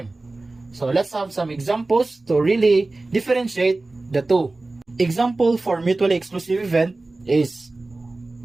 So, let's have some examples to really differentiate the two. Example for mutually exclusive event is,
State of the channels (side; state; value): left; quieter; 3.1 dB